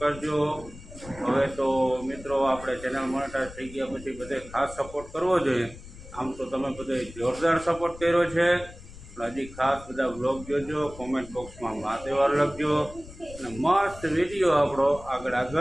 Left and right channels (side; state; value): left; noise; rumble, 16 dB below the sound